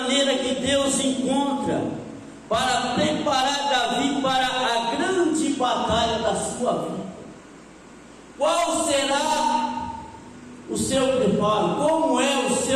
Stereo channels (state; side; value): identical; both; correlation 1.00